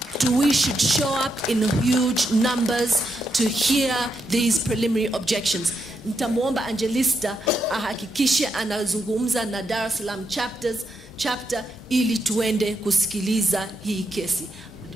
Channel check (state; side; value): normal; both; correlation 0.82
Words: We should show up in huge numbers to hear these preliminary objections. Nitamuomba Angelista ahakikishe anazungumza na Dar es Salaam chapter ili tuende kusikiliza hii kesi,